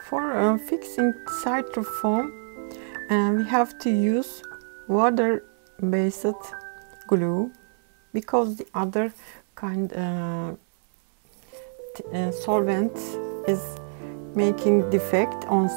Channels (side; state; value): left; silent; digital silence